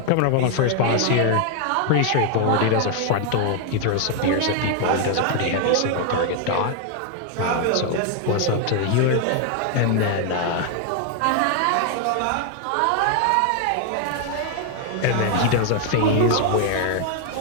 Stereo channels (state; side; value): different; both; correlation 0.00